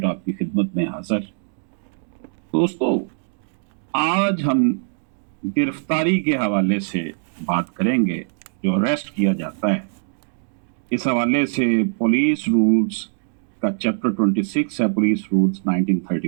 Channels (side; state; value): left; silent; digital silence